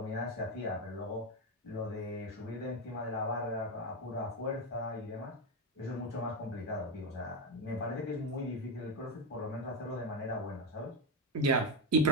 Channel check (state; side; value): normal; both; correlation 0.11